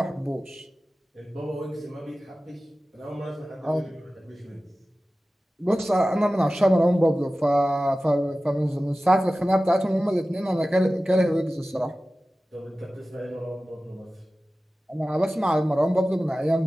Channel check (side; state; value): both; normal; correlation 0.96